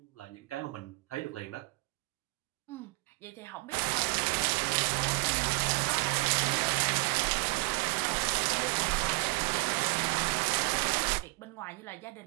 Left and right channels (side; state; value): left; quieter; 26.2 dB